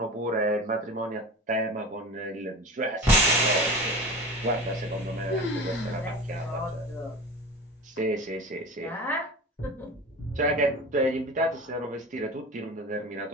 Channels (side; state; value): both; normal; correlation 0.33